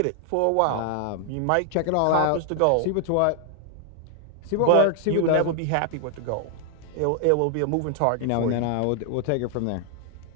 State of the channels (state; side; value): different; both; correlation 0.00